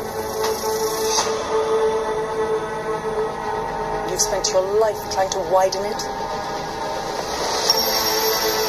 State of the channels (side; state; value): both; identical; correlation 1.00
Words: You've spent your life trying to widen it.